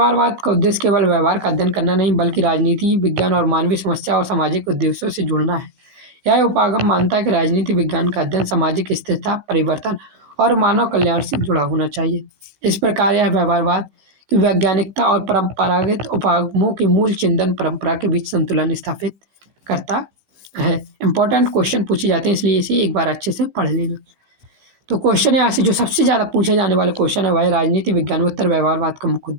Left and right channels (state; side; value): late; left; 16 ms